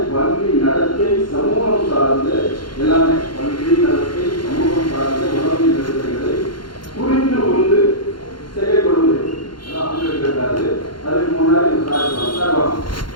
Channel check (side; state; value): right; late; 0.72 ms